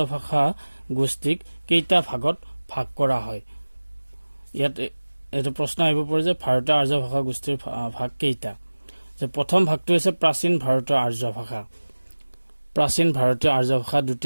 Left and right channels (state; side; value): inverted; both; correlation -1.00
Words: ভাষা গোষ্ঠীক কেইটা ভাগত ভাগ কৰা হয়। ইয়াত এইটো প্ৰশ্ন আহিব পাৰে যে ভাৰতীয় আৰ্য ভাষা গোষ্ঠীৰ ভাগ কেইটা। যে প্ৰথম ভাগটো হৈছে প্ৰাচীন ভাৰতীয় আৰ্য ভাষা, প্ৰাচীন ভাৰতীয় আৰ্য ভাষা।